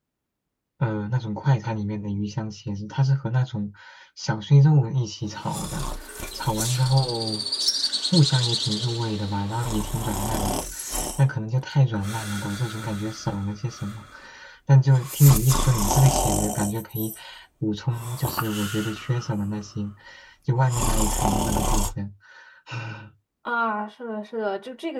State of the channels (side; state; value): both; identical; correlation 1.00